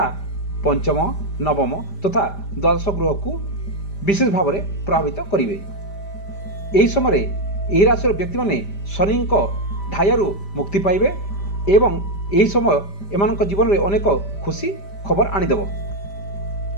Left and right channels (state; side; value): late; right; 5.0 ms